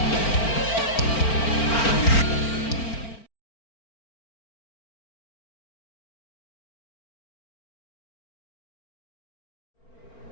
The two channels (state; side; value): late; right; 4.4 ms